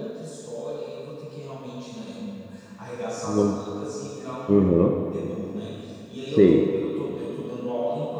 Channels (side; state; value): both; identical; correlation 1.00